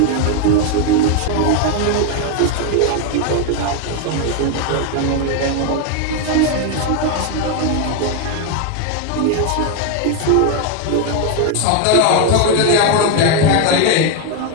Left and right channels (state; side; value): different; both; correlation 0.01